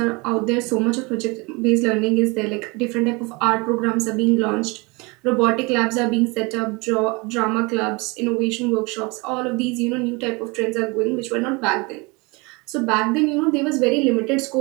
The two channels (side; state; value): left; quieter; 27.3 dB